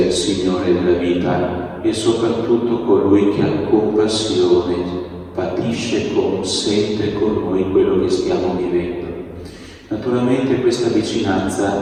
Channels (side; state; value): both; identical; correlation 1.00